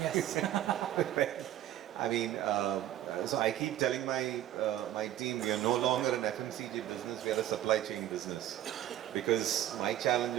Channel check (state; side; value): quieter; left; 12.6 dB